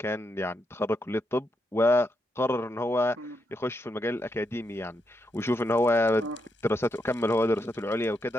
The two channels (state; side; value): normal; both; correlation 0.81